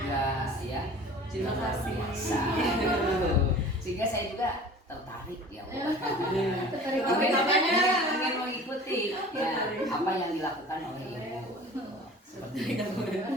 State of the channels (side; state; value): both; normal; correlation 0.43